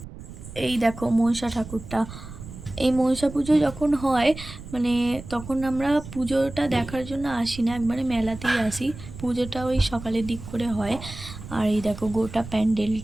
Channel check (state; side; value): noise; right; rumble, 13 dB below the sound